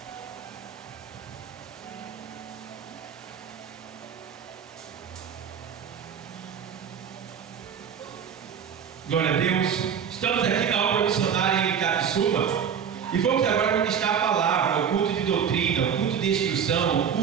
Glória a Deus. Estamos aqui na obra missionária em Itapissuma e vamos agora ministrar a palavra, o culto de doutrina, o culto de instrução, o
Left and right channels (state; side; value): quieter; left; 7.6 dB